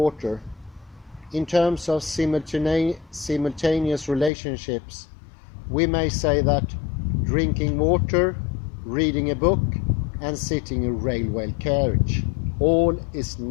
In terms of simultaneous relationships, we may say that drinking water, reading a book, and sitting in a railway carriage all is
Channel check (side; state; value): right; drops out; at 4.3 s